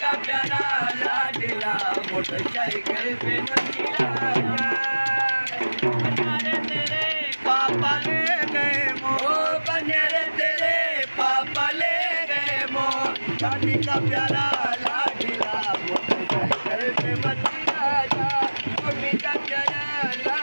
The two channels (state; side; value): inverted; both; correlation -1.00